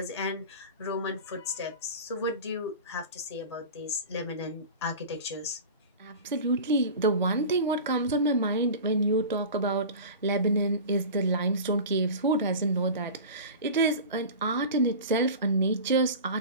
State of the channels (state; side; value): inverted; both; correlation -0.33